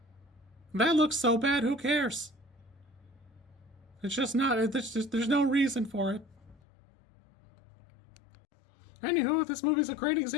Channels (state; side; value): drops out; right; at 6.6 s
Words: that looks so bad, who cares? It's just not, there's no reason for it. Anywho, this movie's a great